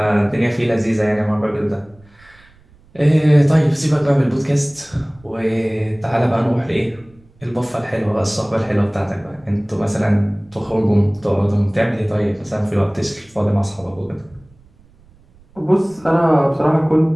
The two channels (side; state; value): right; noise; rumble, 28 dB below the sound